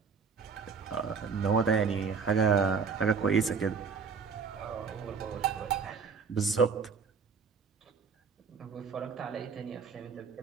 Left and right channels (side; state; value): left; quieter; 5.6 dB